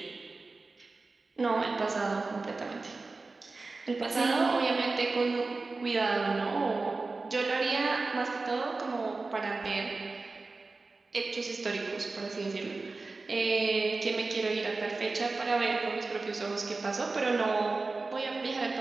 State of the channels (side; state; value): left; quieter; 3.7 dB